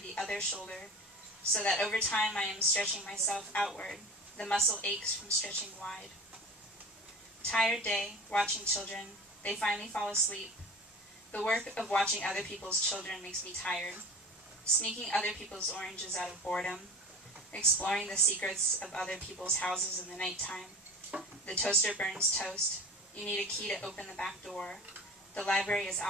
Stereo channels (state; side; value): normal; both; correlation 0.36